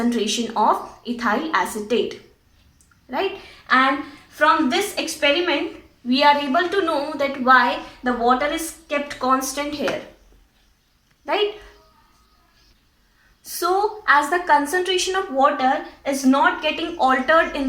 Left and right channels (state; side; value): identical; both; correlation 1.00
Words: of ethyl acetate. Right? And from this experiment, we are able to know that why the water is kept constant here. Right? So as the concentration of water is not getting altered in